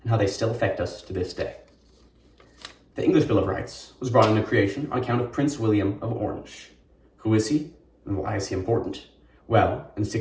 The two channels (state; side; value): identical; both; correlation 1.00